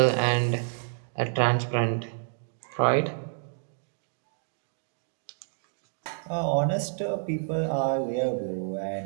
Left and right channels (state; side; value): silent; left; digital silence